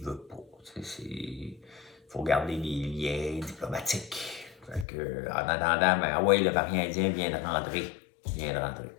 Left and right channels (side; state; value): right; drops out; at 4.9 s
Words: veut pas. Il faut garder les liens diplomatiques. Fait que, en attendant, ben, ah ouais, le variant indien vient de rentrer.